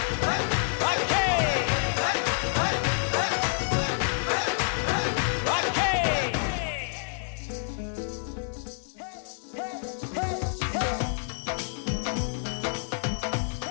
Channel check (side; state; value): right; silent; digital silence